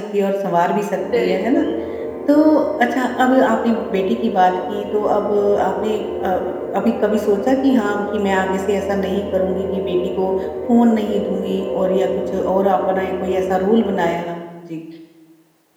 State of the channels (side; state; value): both; identical; correlation 1.00